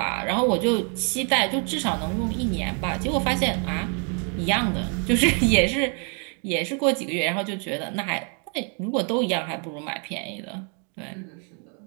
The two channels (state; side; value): quieter; left; 39.4 dB